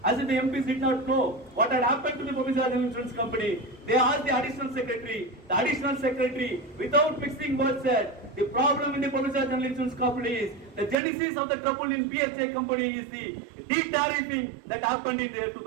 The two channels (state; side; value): drops out; left; at 11.0 s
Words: As if the MPs did not know what had happened to the public sector insurance company, they asked the additional secretary. The additional secretary, without mixing words, said the problem in the public sector insurance company is the genesis of the trouble in PHA company is the de-tariffing that happened in the year